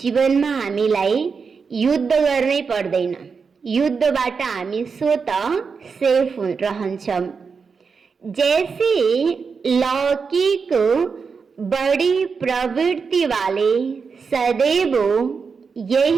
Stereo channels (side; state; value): left; quieter; 5.4 dB